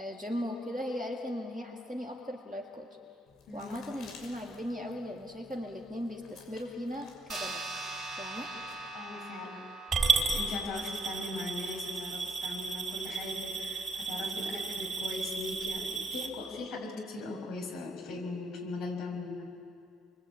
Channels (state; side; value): normal; both; correlation 0.70